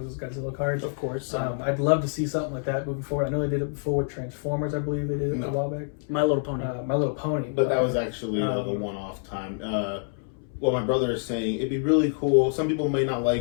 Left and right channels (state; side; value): silent; right; 60 dB below the other